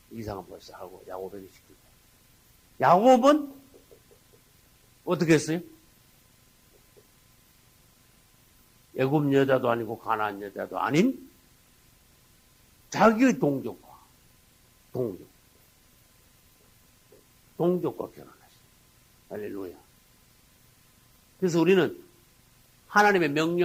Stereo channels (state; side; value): identical; both; correlation 1.00